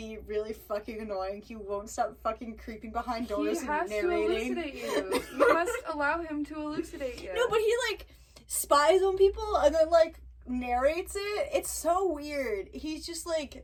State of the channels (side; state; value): both; identical; correlation 1.00